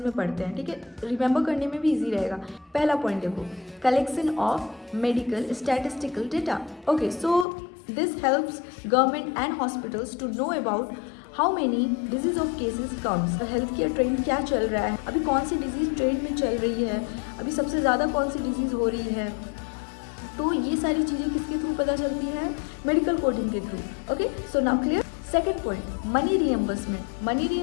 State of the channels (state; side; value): drops out; right; at 7.5 s